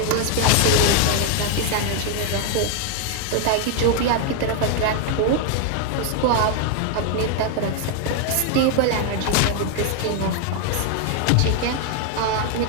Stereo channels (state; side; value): different; both; correlation 0.00